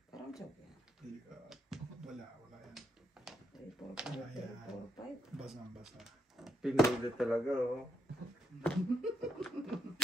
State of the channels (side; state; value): both; normal; correlation 0.78